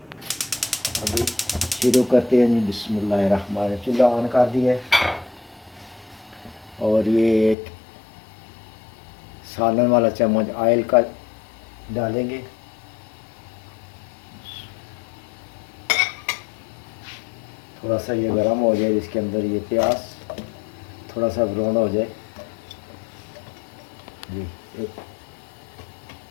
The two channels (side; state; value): right; drops out; at 7.6 s